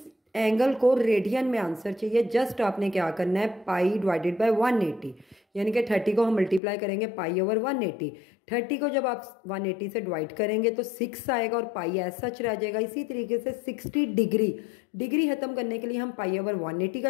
एंगल को रेडियन में आंसर चाहिए। जस्ट आपने क्या करना है, पाई डिवाइडेड बाय 180, यानी कि 30 को हम मल्टीप्लाई करेंगे पाई ओवर 180। 30 को जब आप 180 से डिवाइड करेंगे तो 6 आएगा और पाई एज सच रह जाएगा। इसी तरीके से 60 डिग्री खत्म करने के लिए हम पाई ओवर 180 का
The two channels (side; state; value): right; drops out; at 6.6 s